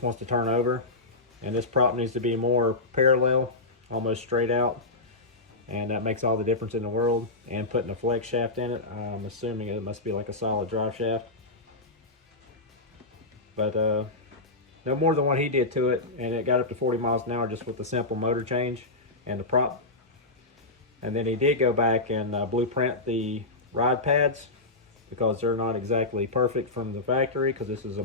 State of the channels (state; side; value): quieter; right; 3.0 dB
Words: wants to turn over, and this prop needs to be more parallel, almost straight out, and that makes all the difference in the world. And putting a flex shaft in it, I'm assuming it must be like a solid drive shaft, but no more than what he did to it, and it got up to 40 miles an hour just with the simple motor change and the prop. And then he did go back and blueprint the rod pads because they're not exactly perfect from the factory, because this is a